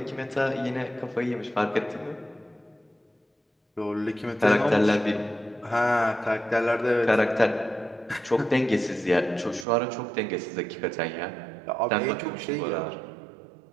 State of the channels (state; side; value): drops out; left; at 9.7 s